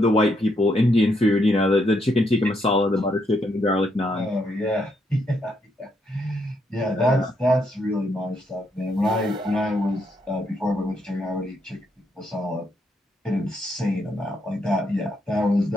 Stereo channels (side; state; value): both; normal; correlation 0.76